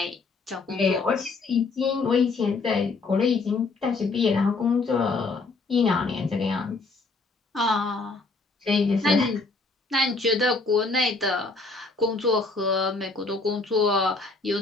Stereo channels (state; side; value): quieter; right; 3.8 dB